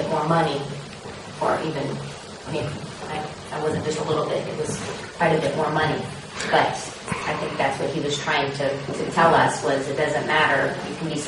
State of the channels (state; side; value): identical; both; correlation 1.00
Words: more money, or even, I wasn't just a little bit, it was quite a bit more money. But I think that's what he was trying to tell us, was it doesn't matter, you can be